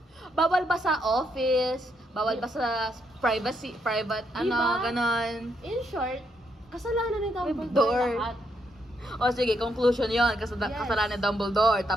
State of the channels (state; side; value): normal; both; correlation 0.77